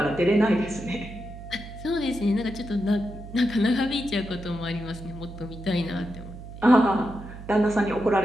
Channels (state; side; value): noise; right; hum, 13 dB below the sound